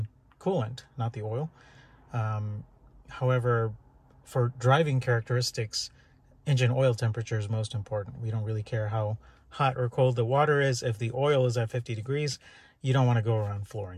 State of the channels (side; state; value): both; identical; correlation 1.00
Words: coolant, not the oil. However, for driving characteristics, engine oil temperature is most important. We don't really care how hot or cold the water is. If the oil is at 50 degrees, you don't want to go around